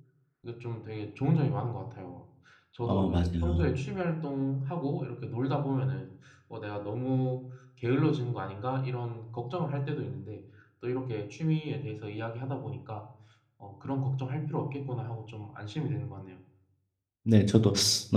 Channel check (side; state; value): both; identical; correlation 1.00